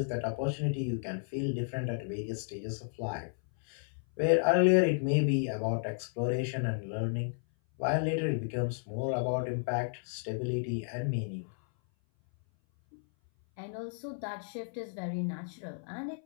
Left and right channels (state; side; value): silent; right; 56 dB below the other